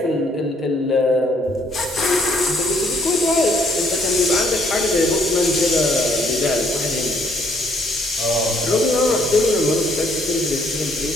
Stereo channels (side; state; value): both; normal; correlation 0.66